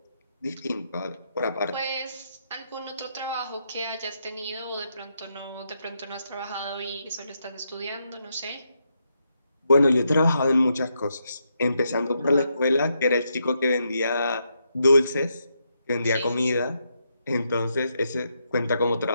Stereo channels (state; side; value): inverted; both; correlation -0.81